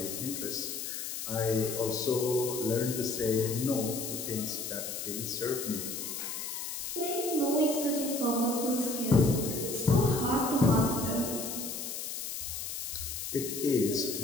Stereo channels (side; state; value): left; noise; hiss, 5 dB below the sound